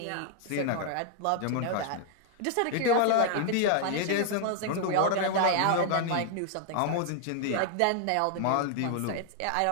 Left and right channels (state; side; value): different; both; correlation 0.00